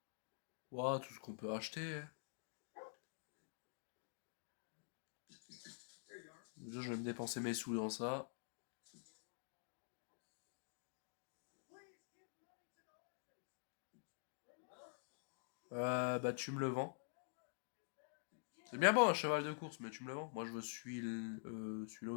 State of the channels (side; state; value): right; silent; digital silence